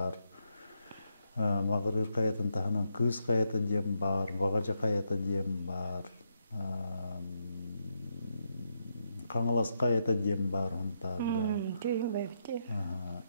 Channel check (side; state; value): both; inverted; correlation -0.80